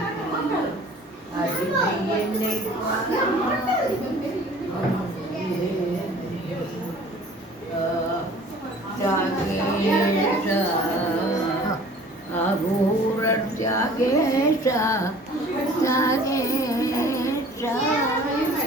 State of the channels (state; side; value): normal; both; correlation 0.49